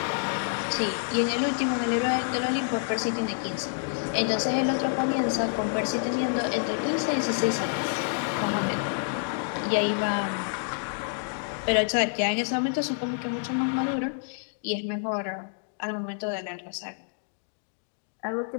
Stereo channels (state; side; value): silent; right; digital silence